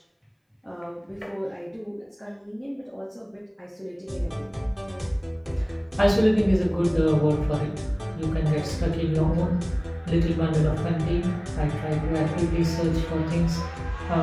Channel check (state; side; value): identical; both; correlation 1.00